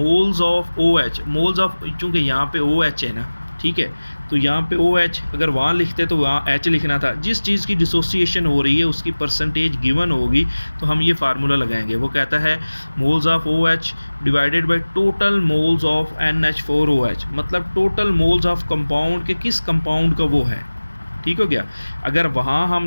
of OH। Moles of, चूँकि यहाँ पे OH है ना, ठीक है। तो यहाँ पे OH अगर वहाँ लिखते तो वहाँ H लिखना था। जिस चीज़ की डिसोसिएशन हो रही है उसकी परसेंटेज गिवन होगी तो हम ये फार्मूला लगाएंगे। वो कहता है moles of OH divided by total moles of NH4OH, मतलब टोटल मोल्स ऑफ कंपाउंड के किस कंपाउंड का वो है। ठीक हो गया। अगर वहाँ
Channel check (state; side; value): inverted; both; correlation -1.00